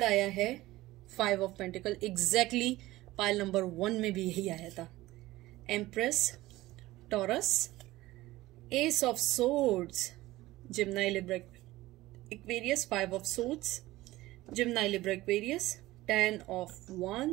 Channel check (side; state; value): left; quieter; 17.7 dB